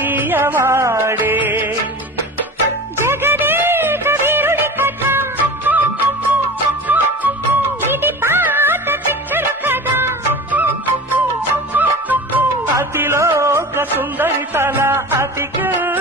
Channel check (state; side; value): normal; both; correlation 0.33